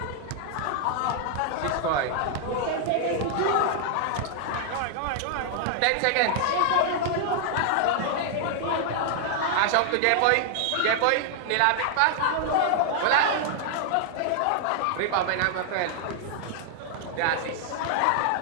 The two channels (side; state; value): both; different; correlation -0.01